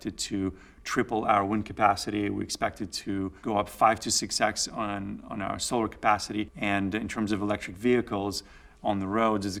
to triple our wind capacity. We expected to go up 5 to 6x on our solar capacity. And in terms of electric vehicles on the roads, is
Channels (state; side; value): identical; both; correlation 1.00